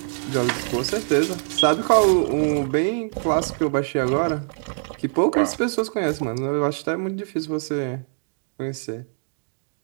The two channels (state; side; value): silent; left; digital silence